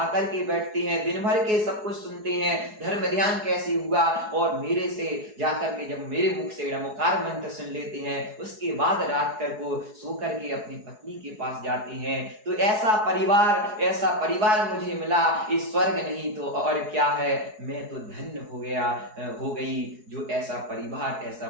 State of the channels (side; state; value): left; late; 4.7 ms